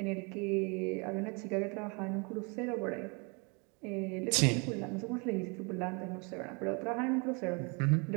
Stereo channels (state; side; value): quieter; left; 32.3 dB